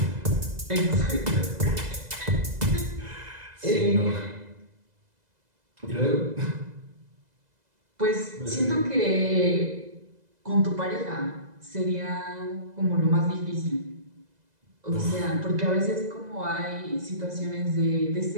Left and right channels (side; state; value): left; late; 2.0 ms